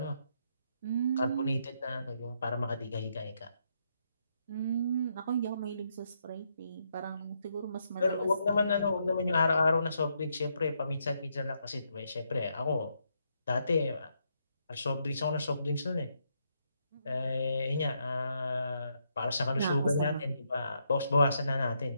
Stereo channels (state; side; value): inverted; both; correlation -0.78